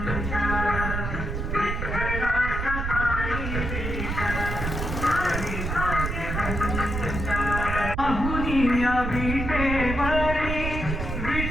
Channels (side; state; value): right; noise; rumble, 3 dB below the sound